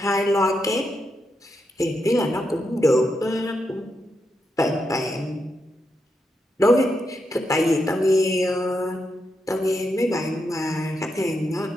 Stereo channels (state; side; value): normal; both; correlation 0.84